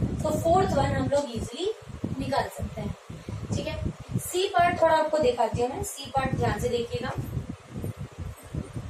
तो फोर्थ वन हम लोग इजिली निकाल सकते हैं. ठीक है, सी पार्ट थोड़ा आपको दिखाती हूँ मैं. सी पार्ट ध्यान से देखिएगा.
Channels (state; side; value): identical; both; correlation 1.00